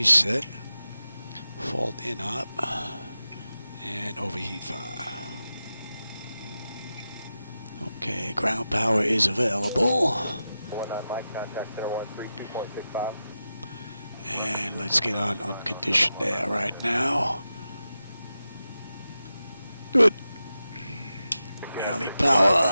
Fault in up. And overheat fire. Okay, ground power is available. 19 Mike, contact center 132.65. And let's get on unconditioned air right now. Good. Galley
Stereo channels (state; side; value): inverted; both; correlation -0.91